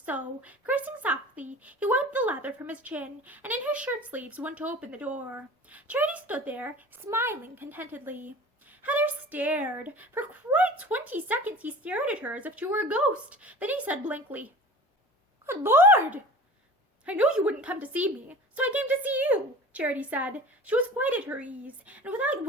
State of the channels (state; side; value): normal; both; correlation 0.39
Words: so, cursing softly, he wiped the lather from his chin, and in his shirt-sleeves went to open the door. Charity stood there, smiling contentedly. Heather stared. For quite 20 seconds he stared at her as if she were a ghost. Then he said blankly, "Good Lord! I knew you wouldn't come to see me, so I came to see you," Charity said. She was quite at her ease, and without